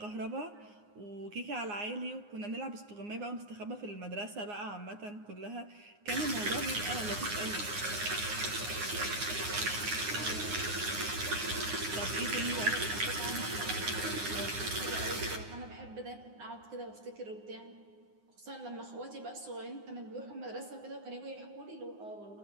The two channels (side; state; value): left; late; 9.7 ms